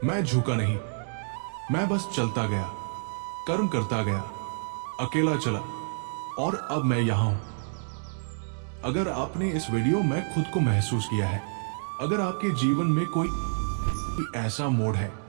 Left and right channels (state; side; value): silent; left; digital silence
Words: मैं झुका नहीं, मैं बस चलता गया, कर्म करता गया, अकेला चला, और अब मैं यहां हूं। अगर आपने इस वीडियो में खुद को महसूस किया है, अगर आपके जीवन में कोई ऐसा मोड़ है